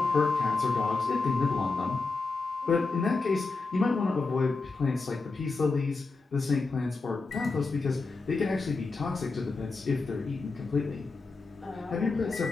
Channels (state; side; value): quieter; right; 3.9 dB